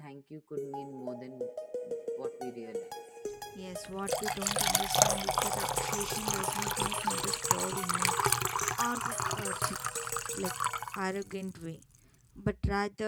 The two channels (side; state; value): both; identical; correlation 1.00